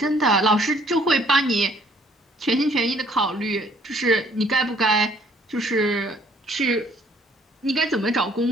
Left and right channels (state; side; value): normal; both; correlation 0.61